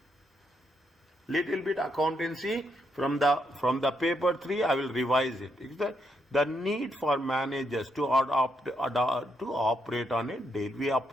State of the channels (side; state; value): both; normal; correlation 0.78